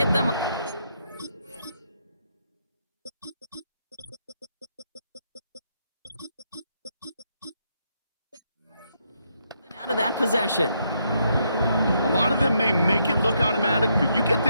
them out of that possession. A lot of them may make it look automatic, but you get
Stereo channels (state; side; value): inverted; both; correlation -0.77